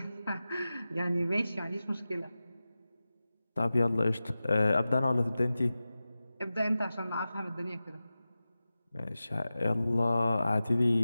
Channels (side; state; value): both; inverted; correlation -0.95